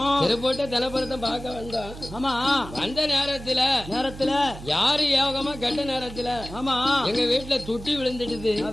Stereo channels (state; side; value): noise; right; hum, 13 dB below the sound